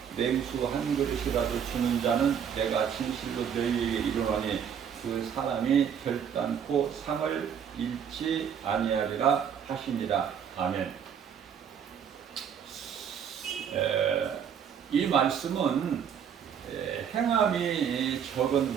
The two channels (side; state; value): left; quieter; 8.0 dB